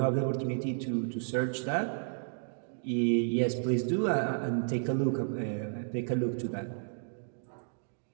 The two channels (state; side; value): silent; left; digital silence